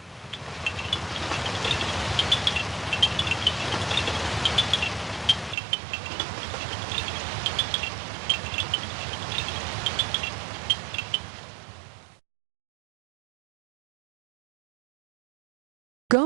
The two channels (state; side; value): drops out; left; at 5.6 s